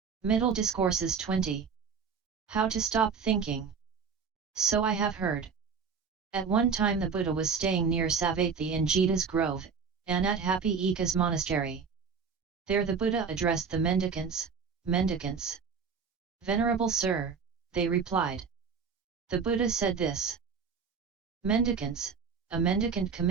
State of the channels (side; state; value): left; quieter; 5.9 dB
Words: Middle Discourses 20. How to stop thinking. So I have heard. At one time the Buddha was staying near Savatthi in Jeta's grove, and at Happy Eka's monastery. There the Buddha addressed the mendicants. Venerable Sir, they replied. The Buddha said this. Mendicants, a mendicant